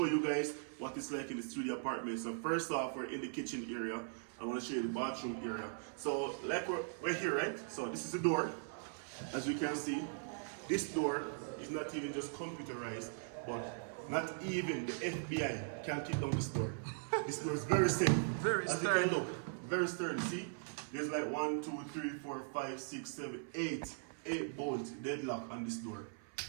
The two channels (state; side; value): silent; left; 51 dB below the other